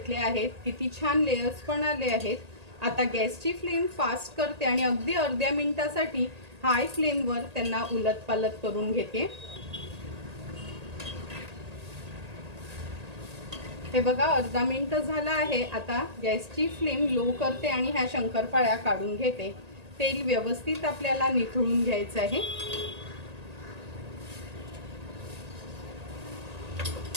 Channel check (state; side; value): late; left; 1.8 ms